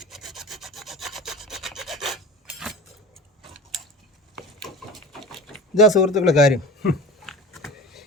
ഇതാ സുഹൃത്തുക്കളെ കാര്യം.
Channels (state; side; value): normal; both; correlation 0.34